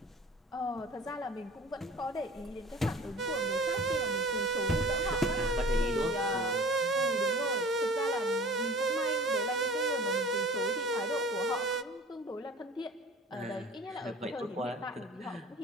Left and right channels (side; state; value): both; normal; correlation 0.43